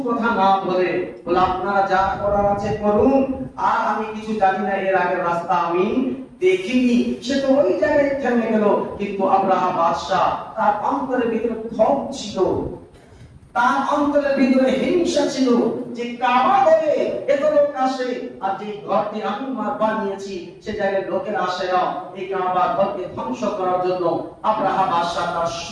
কথা না বলে বলে আপনারা যা করার আছে করুন, আর আমি কিছু জানি না, এর আগের রাস্তা আমি দেখিনি। সে তো ওই জায়গায় থেমে গেল। কিন্তু আব্রাহা বাদশা, তার অন্তরের ভিতরে ক্ষোভ ছিল, তার অন্তরের ভিতরে হিংসা ছিল যে কাবা ঘরে এত লোক আসে, আর যে ঘরটি আমি বানিয়েছি সে জায়গায় লোকের আসে না, এই কাবা ঘরকে ধ্বংস করার জন্য আব্রাহা বাদশা তার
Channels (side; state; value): both; identical; correlation 1.00